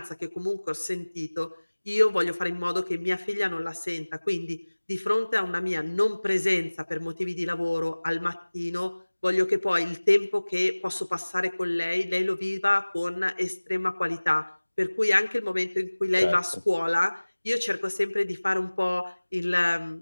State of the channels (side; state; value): both; inverted; correlation -1.00